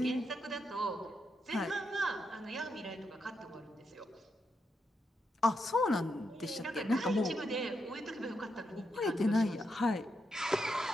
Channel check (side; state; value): both; normal; correlation 0.83